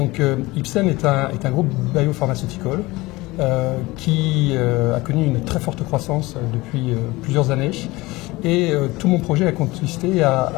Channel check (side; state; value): right; quieter; 21.1 dB